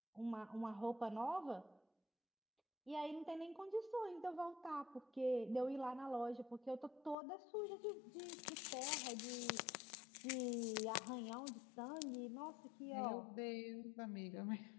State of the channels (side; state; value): right; drops out; at 7.2 s